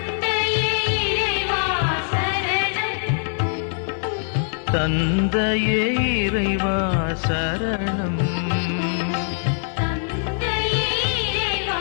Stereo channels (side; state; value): right; silent; 64 dB below the other